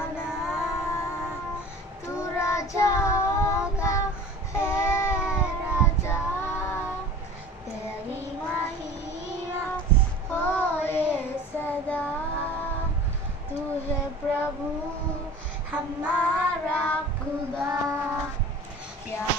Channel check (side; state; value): both; normal; correlation 0.41